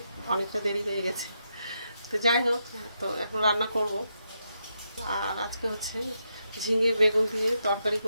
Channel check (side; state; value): both; inverted; correlation -0.83